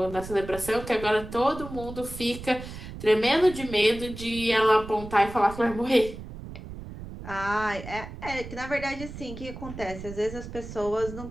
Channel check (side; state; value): right; noise; rumble, 11 dB below the sound